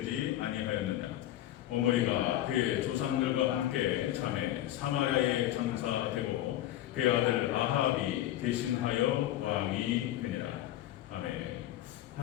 아니하였느냐. 오므리가 그의 조상들과 함께 잠에 사마리아에 전사되고 그의 아들 아합이 대신하여 왕이 되니라. 아멘.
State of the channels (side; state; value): right; quieter; 13.5 dB